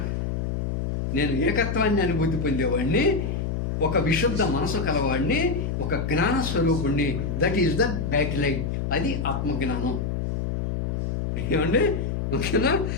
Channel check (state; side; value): noise; left; hum, 1 dB below the sound